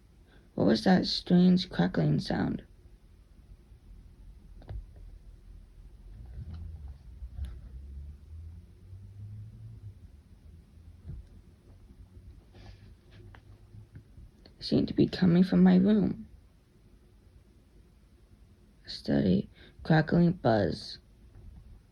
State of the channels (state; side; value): identical; both; correlation 1.00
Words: What was that strange crackling sound? It seemed to be coming from my room. A steady, crackling buzz.